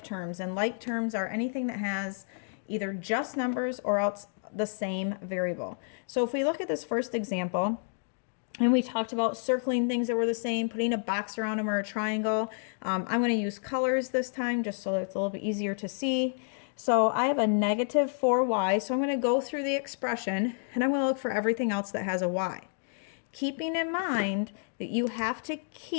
terms, and like terms are anything that has either just numbers or else the same variable. So if we look at this first example, and we talked about circling things that were the same, putting a box around them or a triangle. I'm going to use colors this time just so that it's a little bit easier to see. So I have a negative 4y, so I'm going to go through the expression and I'm going to look for everything else that has a y. Keeping in mind that you have to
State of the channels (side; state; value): right; silent; 58 dB below the other